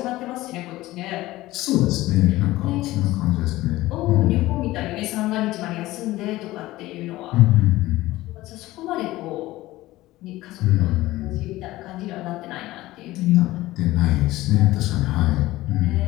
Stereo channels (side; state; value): right; quieter; 17.4 dB